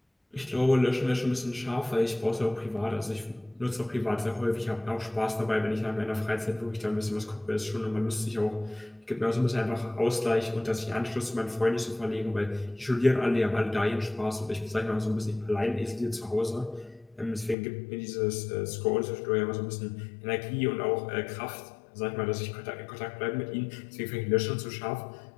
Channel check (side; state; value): right; drops out; at 17.6 s